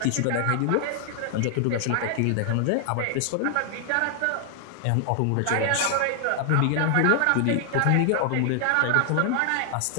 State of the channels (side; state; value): both; different; correlation 0.00